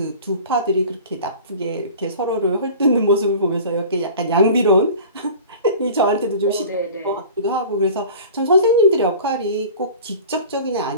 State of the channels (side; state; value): both; inverted; correlation -0.41